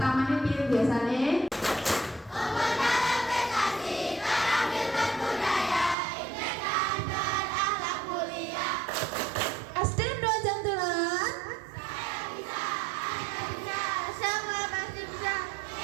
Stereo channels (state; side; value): drops out; left; at 6.0 s